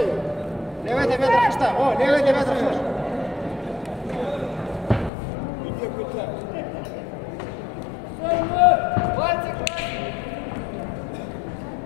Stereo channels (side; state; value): right; drops out; at 5.1 s